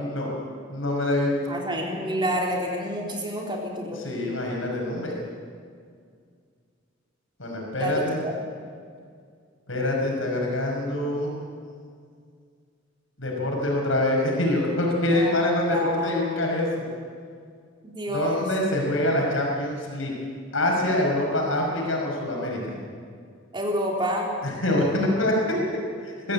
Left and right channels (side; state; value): both; normal; correlation 0.21